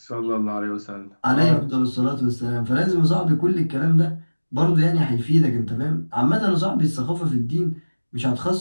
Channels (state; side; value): inverted; both; correlation -1.00